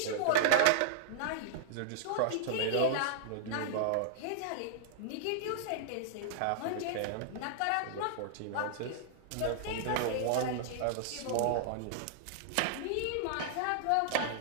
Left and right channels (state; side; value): different; both; correlation -0.01